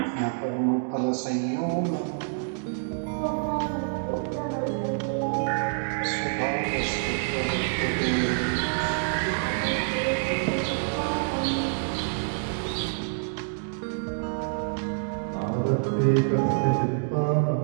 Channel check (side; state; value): left; silent; digital silence